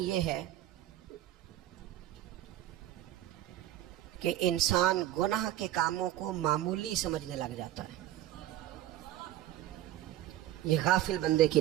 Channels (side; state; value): left; quieter; 13.6 dB